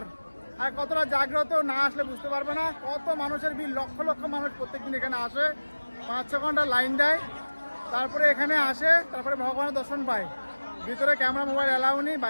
আর কতটা জাগ্রত, না আসলে বুঝতে পারবে না। কত মানুষের ভিড়, লক্ষ লক্ষ মানুষ প্রত্যেকদিন এখানে আসে, 5-6 ঘন্টা লাইন দেয়, তারপরে এখানে আসে, তারপরে ভগবানের দর্শন পায়। ভিতরে ক্যামেরা মোবাইল অ্যালাউ নেই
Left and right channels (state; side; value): inverted; both; correlation -1.00